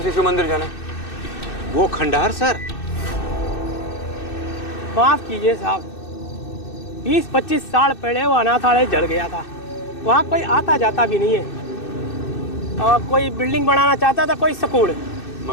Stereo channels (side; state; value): right; late; 2.6 ms